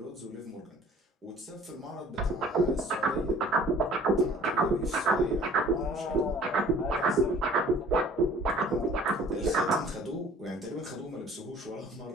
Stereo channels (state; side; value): normal; both; correlation 0.50